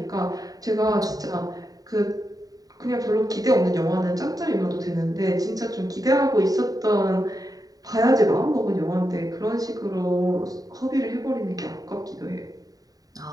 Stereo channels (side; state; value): left; late; 0.18 ms